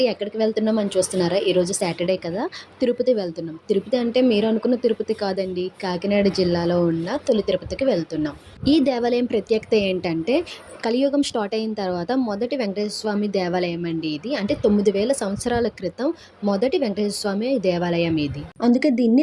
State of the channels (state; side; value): identical; both; correlation 1.00